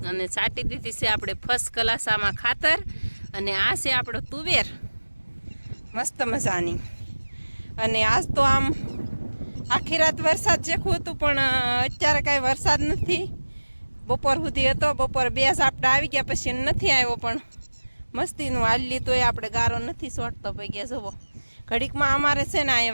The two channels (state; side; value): inverted; both; correlation -1.00